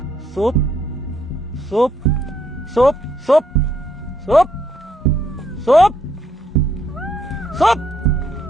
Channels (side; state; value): both; normal; correlation 0.72